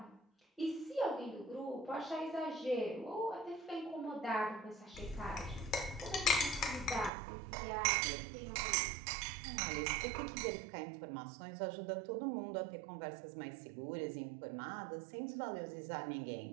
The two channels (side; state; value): left; drops out; at 7.1 s